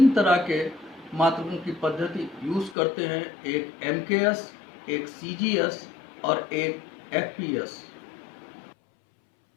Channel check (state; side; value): drops out; right; at 2.8 s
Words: तरह के मात्रकों की पद्धति यूज़ करते हैं, एक MKS, एक CGS और एक FPS।